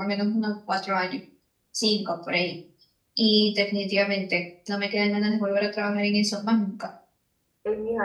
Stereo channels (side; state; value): both; identical; correlation 1.00